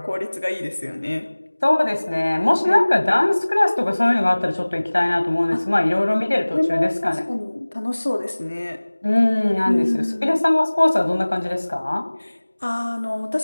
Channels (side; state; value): both; inverted; correlation -1.00